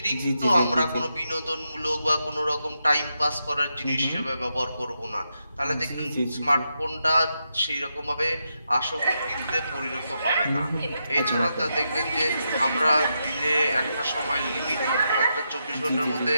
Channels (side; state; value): both; inverted; correlation -0.84